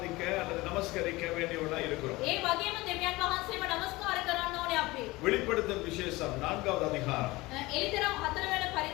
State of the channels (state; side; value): quieter; right; 20.9 dB